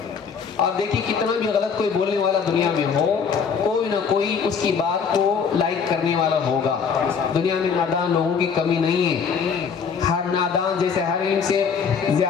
آپ دیکھیے کتنا بھی غلط کوئی بولنے والا دنیا میں ہو، کوئی نہ کوئی اس کی بات کو لائک کرنے والا ہوگا۔ دنیا میں نادان لوگوں کی کمی نہیں ہے، ہر نادان جیسے ہر علم سے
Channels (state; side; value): quieter; right; 6.3 dB